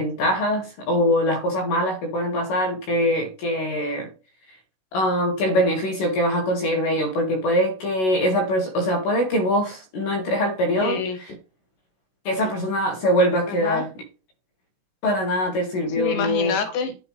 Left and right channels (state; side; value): late; right; 16 ms